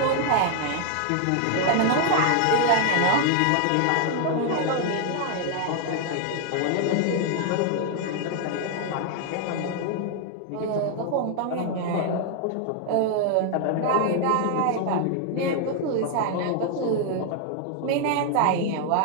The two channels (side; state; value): both; different; correlation 0.00